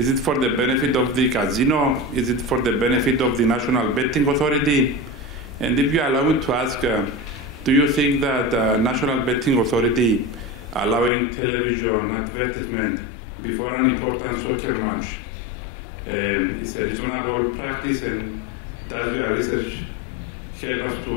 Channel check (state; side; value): drops out; right; at 11.1 s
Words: it for the benefit of the casino? Is it for the benefit of the National Betting Authority? And if you allow me to ask, do you think that National Betting Authority allowing television advertisement before an important soccer match is a reasonable practice, and does your research help us